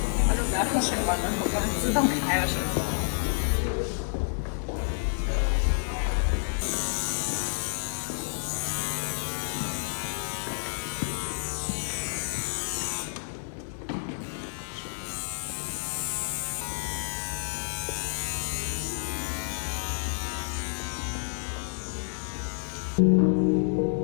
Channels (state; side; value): silent; right; digital silence